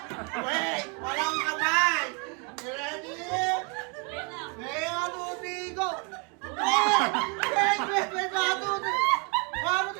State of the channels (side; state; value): left; quieter; 34.2 dB